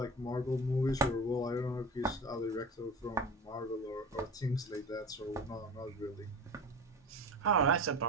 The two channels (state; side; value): normal; both; correlation 0.32